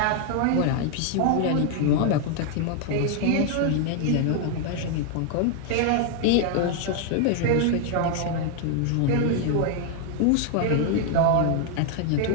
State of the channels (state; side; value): different; both; correlation 0.00